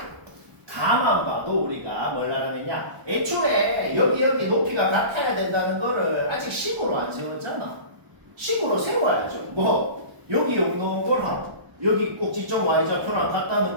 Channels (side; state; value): left; late; 1.0 ms